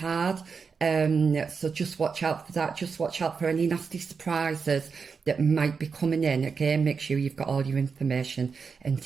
So just watch out for that. Just watch out for any nasty surprises that might be coming in. Again, make sure you've got all your information and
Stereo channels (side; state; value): left; quieter; 5.5 dB